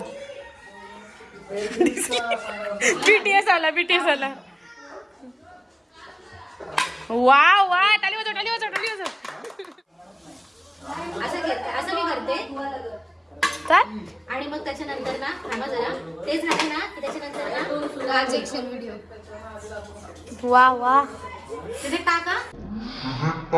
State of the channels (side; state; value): both; identical; correlation 1.00